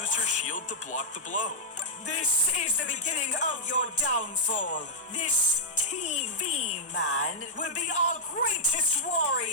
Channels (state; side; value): normal; both; correlation -0.06